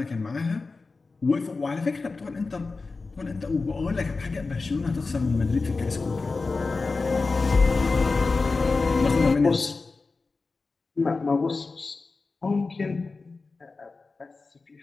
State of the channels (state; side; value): quieter; right; 3.9 dB